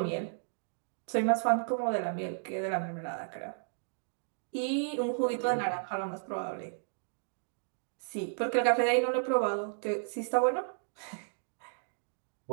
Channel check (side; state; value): left; silent; digital silence